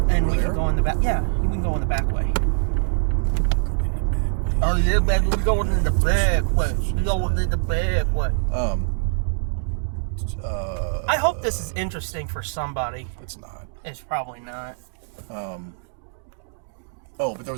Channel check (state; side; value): silent; left; digital silence